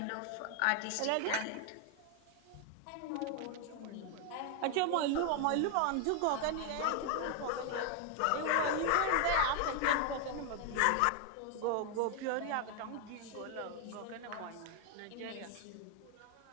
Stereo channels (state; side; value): different; both; correlation 0.00